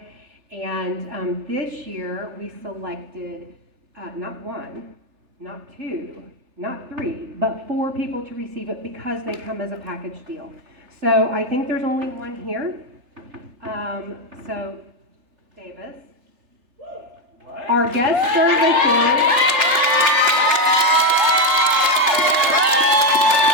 And this year, we selected not one, not two, not three, but 4 people to receive it because they come as a package deal. So I think there's only one here. So Davis. What? Our guest services.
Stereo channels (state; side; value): late; left; 3.4 ms